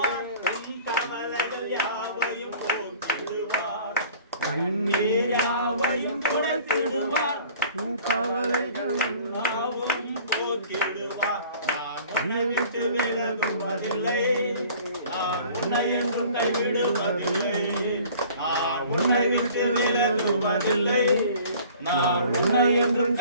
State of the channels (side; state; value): both; inverted; correlation -0.49